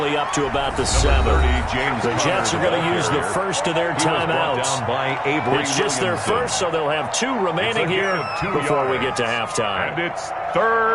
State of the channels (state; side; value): identical; both; correlation 1.00